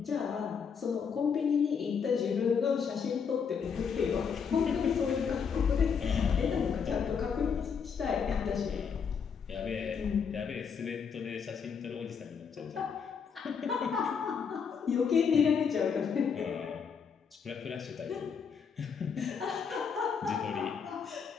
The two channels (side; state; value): right; quieter; 6.5 dB